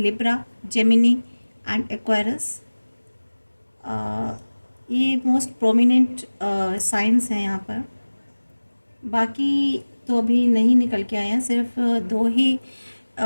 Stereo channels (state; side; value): inverted; both; correlation -1.00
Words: जेमिनी एंड एक्वायरस। ये मोस्ट प्रोमिनेंट साइंस हैं यहाँ पर। बाकी तो अभी नहीं निकल के आए हैं, सिर्फ दो ही